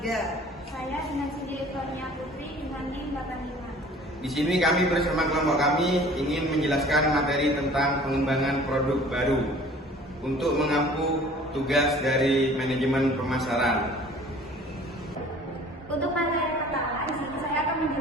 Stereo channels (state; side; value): normal; both; correlation 0.49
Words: Saya Dinasi Direktornya Putri dengan NIM 85. Di sini kami bersama kelompok kami ingin menjelaskan materi tentang pengembangan produk baru untuk mengampu tugas dari manajemen pemasaran. Untuk materi pertama, di sini saya akan